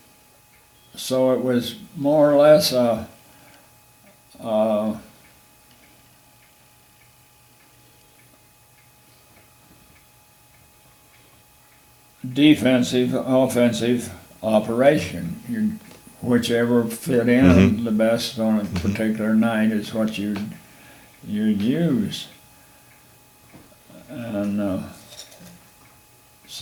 So it was more or less a defensive, offensive operation. Whichever fit in the best on a particular night is what you'd use. And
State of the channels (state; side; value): identical; both; correlation 1.00